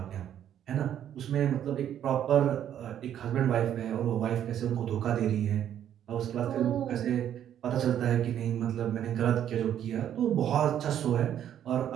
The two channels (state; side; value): quieter; left; 10.3 dB